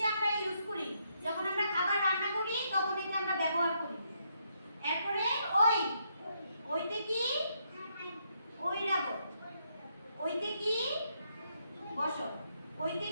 আমরা ইউজ করি যখন আমরা খাবার রান্না করি তখন এটা আমরা ব্যবহার করি এরপরে ওই ওইতে কি ঐরাবত ওইতে কি বসো ওইতে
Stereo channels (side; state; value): both; inverted; correlation -0.77